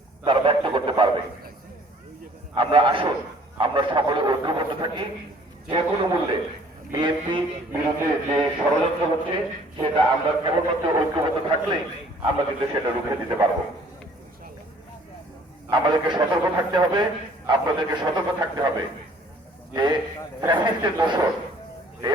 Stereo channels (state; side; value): normal; both; correlation 0.56